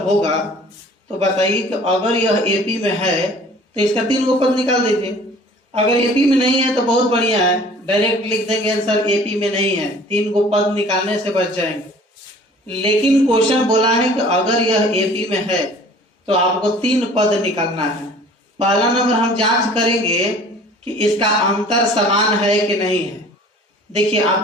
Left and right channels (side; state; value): both; normal; correlation 0.49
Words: होगा तो बताइए कि अगर यह एपी में है तो इसका 3 गो पद निकाल दीजिए। अगर एपी में नहीं है तो बहुत बढ़िया है, डायरेक्ट लिख देंगे आंसर एपी में नहीं है, 3 गो पद निकालने से बच जाएंगे। लेकिन क्वेश्चन बोला है कि अगर यह एपी में है तो आपको 3 पद निकालना है। पहला नंबर हम जांच करेंगे कि इसका अंतर समान है कि नहीं है। देखिए,